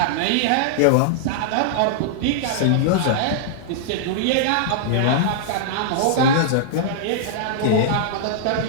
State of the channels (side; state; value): both; different; correlation -0.02